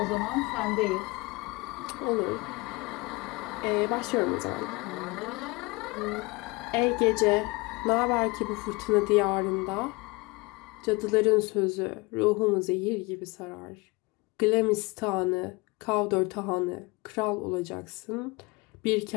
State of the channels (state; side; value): quieter; right; 25.5 dB